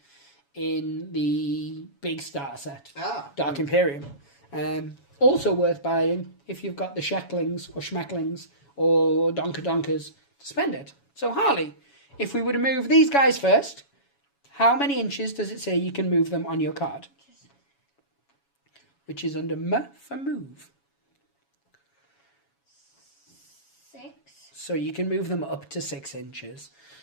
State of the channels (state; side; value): late; right; 7.1 ms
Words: in the big starter set, Dark Imperium. Also worth buying if you've got the Shecklings or Schmecklings or Donker-Donkers to spend it. So, Harley, if we were to move these guys first... How many inches does it say you can move them on your card? Which is under M for move. 6. So you can move them up to 6 inches.